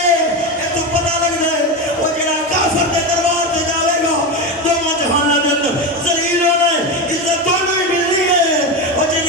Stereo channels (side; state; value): both; normal; correlation 0.17